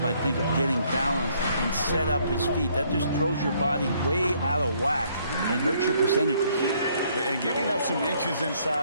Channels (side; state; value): both; inverted; correlation -0.66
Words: I think, of getting balanced and set up his feet. That just throws your body way out of whack and hurts your percentages. And giving up some inches